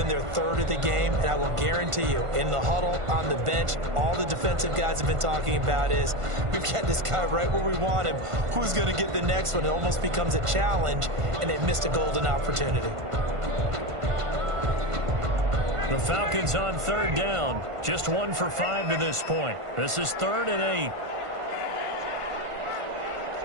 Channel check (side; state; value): left; late; 1.5 ms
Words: their 3rd of the game, and I will guarantee you, in the huddle, on the bench, all the defensive guys have been talking about is, we've got this guy right where we want him. Who's going to get the next one? It almost becomes a challenge, and they missed a golden opportunity. The Falcons on 3rd down. Just 1 for 5 to this point. This is 3rd and 8.